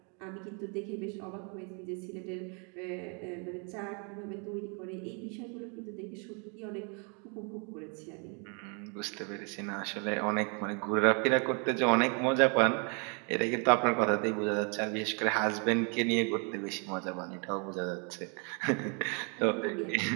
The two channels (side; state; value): left; quieter; 36.7 dB